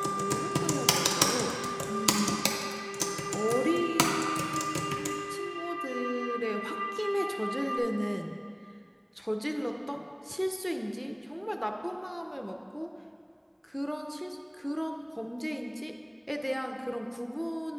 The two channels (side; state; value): both; identical; correlation 1.00